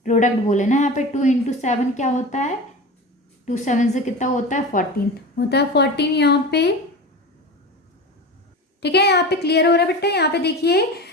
प्रोडक्ट बोले ना, यहाँ पे 2 into 7 क्या होता है, 2 7 से कितना होता है, 14 होता है, 14 यहाँ पे, ठीक है। यहाँ पे क्लियर हो रहा है बेटा। यहाँ पे देखिए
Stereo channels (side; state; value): both; normal; correlation 0.30